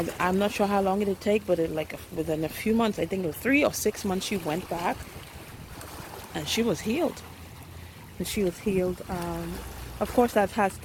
not sure how long it'll take, but within a few months, I think it was 3 or 6 months, she went back and she was healed. And she was healed. Of course, that has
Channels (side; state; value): both; identical; correlation 1.00